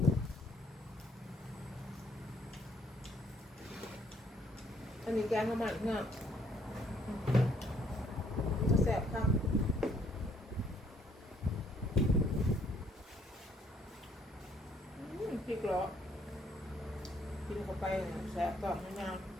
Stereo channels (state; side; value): normal; both; correlation 0.66